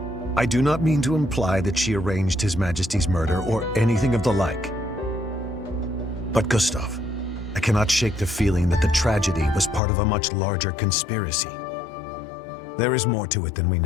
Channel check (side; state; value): right; drops out; at 9.8 s